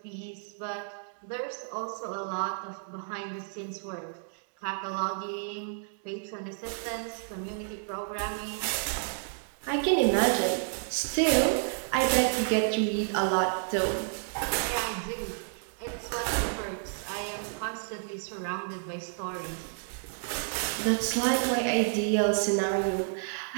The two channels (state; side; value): silent; left; digital silence